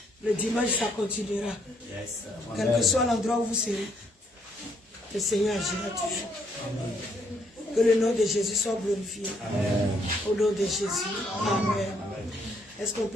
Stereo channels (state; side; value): normal; both; correlation 0.71